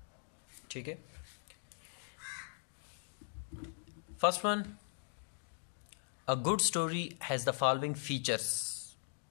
ठीक है। First one, a good story has the following features.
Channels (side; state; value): right; silent; digital silence